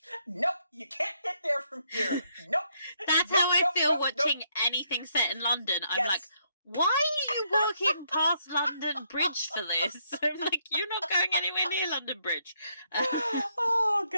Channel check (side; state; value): both; inverted; correlation -0.73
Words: you can't get there from here. Nope. That's how I feel watching anything set in London. I'm like, why are you walking past London Bridge for this? I'm like, you're not going anywhere near London Bridge. Oh,